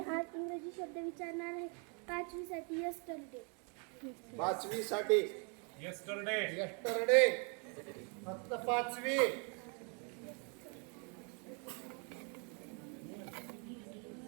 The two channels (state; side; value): quieter; left; 37.0 dB